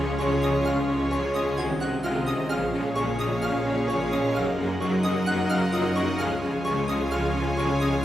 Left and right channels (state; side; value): normal; both; correlation 0.88